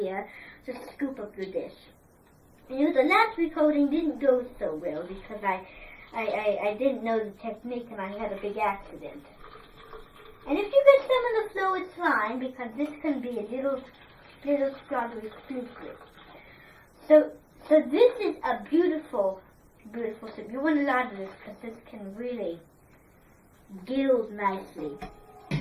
to scoop up your dish. You know, the last recording didn't go so well because I didn't know the technique and I had a big accident. And if you get some of the flow, it's fine because this can be a little strawberry exclusive. So this is a beautiful soup. You want a lot of this because this can really gild nicely.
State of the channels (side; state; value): both; identical; correlation 1.00